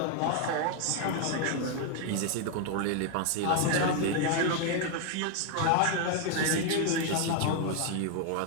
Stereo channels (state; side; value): different; both; correlation 0.01